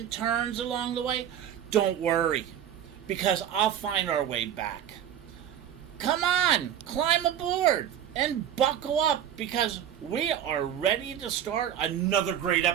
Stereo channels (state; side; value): quieter; left; 10.1 dB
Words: turns along the way, don't worry, because I'll find our way back. Come on, climb aboard and buckle up because we are ready to start another great